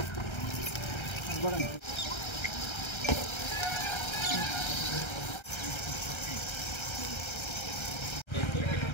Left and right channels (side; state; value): right; late; 1.3 ms